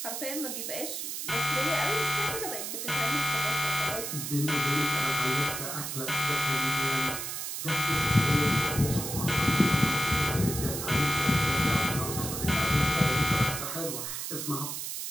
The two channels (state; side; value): noise; right; hiss, 5 dB below the sound